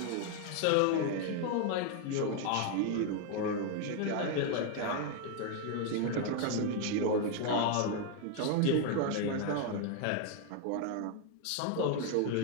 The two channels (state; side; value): different; both; correlation 0.01